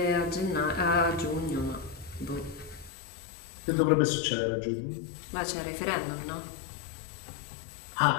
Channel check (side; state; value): right; drops out; at 2.9 s